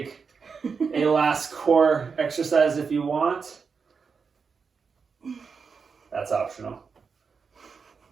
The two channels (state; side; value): quieter; left; 5.5 dB